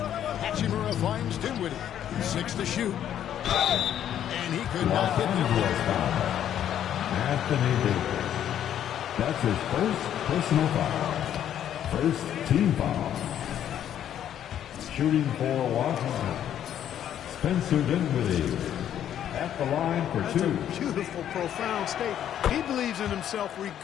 Hachimura finds Dinwiddie. 6 to shoot. And he could not hit him. Anthony Davis. That's his first personal foul. First team foul. Shooting for Washington. Spencer Dinwiddie at the line for That's 2. a beautiful, profound statement. He believes in himself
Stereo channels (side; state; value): right; quieter; 10.4 dB